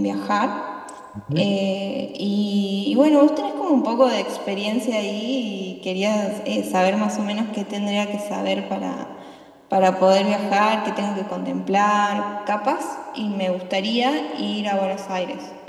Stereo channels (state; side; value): identical; both; correlation 1.00